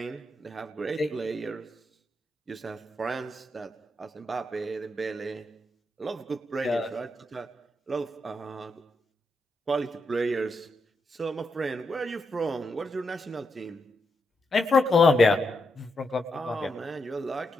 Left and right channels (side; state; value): both; normal; correlation 0.83